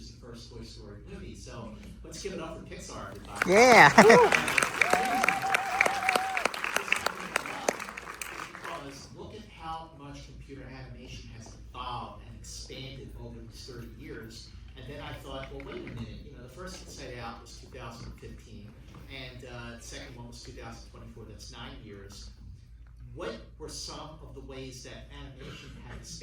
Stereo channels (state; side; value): identical; both; correlation 1.00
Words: the first Toy Story movie. So let's give it up for Pixar, everybody. Yeah. Because look at how much computer animation has evolved and expanded over these 30 years. And then I thought, well, wait a minute. The first Inside Out was 2015, and the second one was 2024. That's 9 years. What were some of the ways that animation had